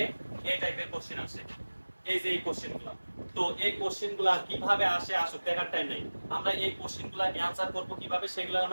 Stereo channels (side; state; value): both; inverted; correlation -1.00